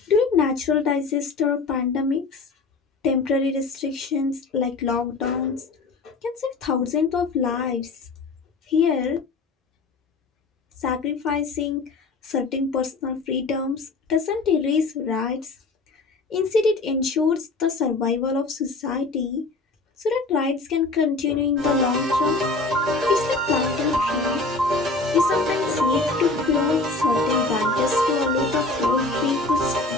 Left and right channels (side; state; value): right; quieter; 3.6 dB